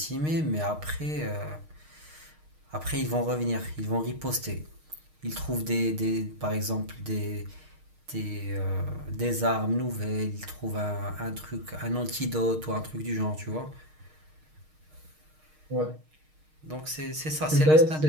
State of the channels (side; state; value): left; late; 6.5 ms